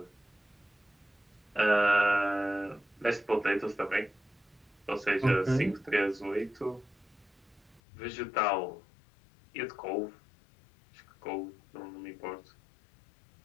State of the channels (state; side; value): drops out; right; at 7.8 s